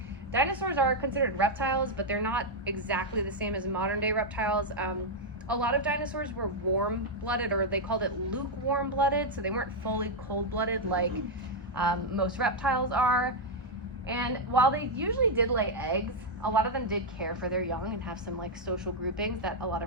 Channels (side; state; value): both; normal; correlation -0.01